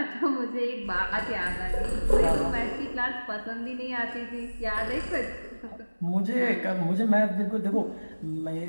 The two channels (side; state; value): both; inverted; correlation -1.00